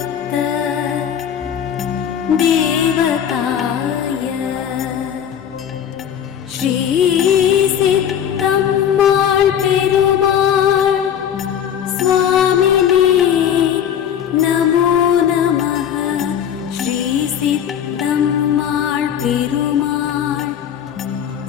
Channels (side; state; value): right; quieter; 9.1 dB